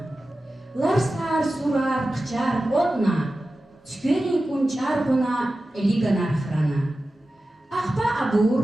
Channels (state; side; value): normal; both; correlation 0.94